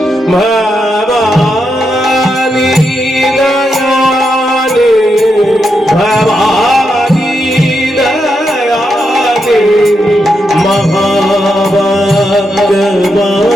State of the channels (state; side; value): normal; both; correlation 0.83